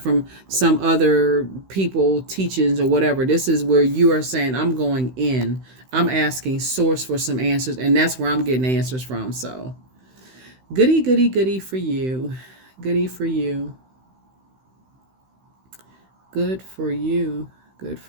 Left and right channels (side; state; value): left; late; 16 ms